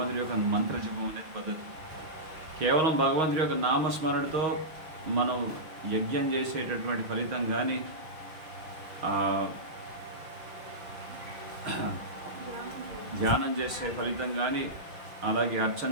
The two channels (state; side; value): late; left; 6.3 ms